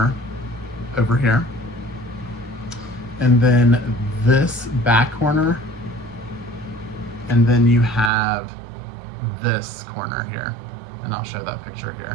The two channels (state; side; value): drops out; left; at 8.1 s